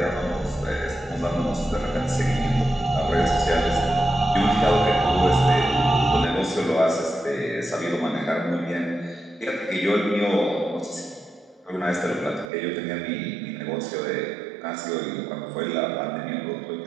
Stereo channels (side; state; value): left; drops out; at 12.5 s